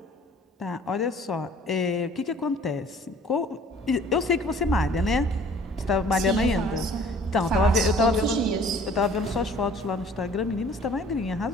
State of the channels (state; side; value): normal; both; correlation 0.52